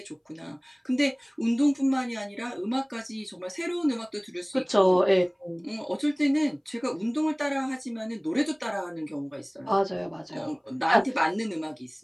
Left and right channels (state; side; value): identical; both; correlation 1.00